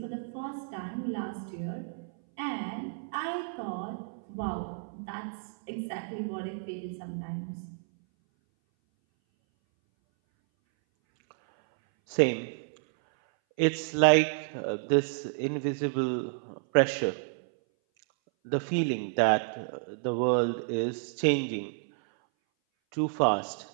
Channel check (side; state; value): left; silent; 58 dB below the other